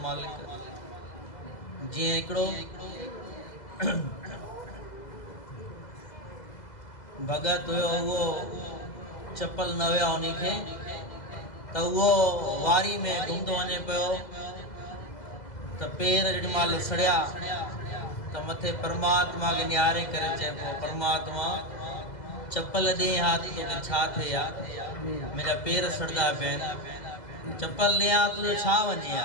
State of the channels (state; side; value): late; right; 2.0 ms